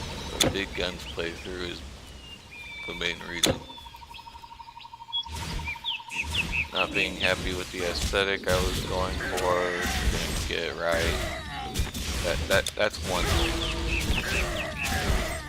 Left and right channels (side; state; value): both; identical; correlation 1.00